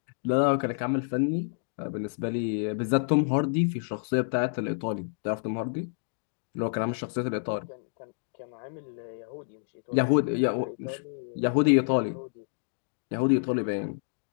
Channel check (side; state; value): right; silent; digital silence